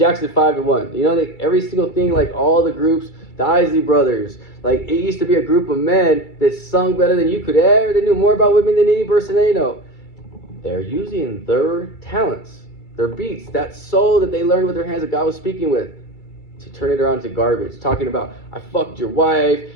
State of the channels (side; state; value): right; late; 2.3 ms